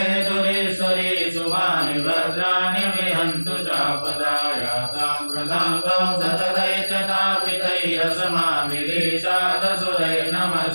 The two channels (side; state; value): both; inverted; correlation -1.00